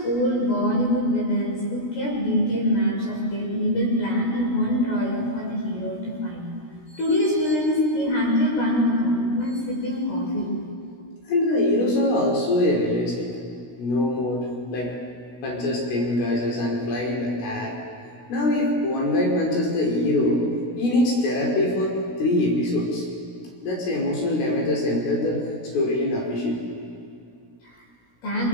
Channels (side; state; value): right; late; 16 ms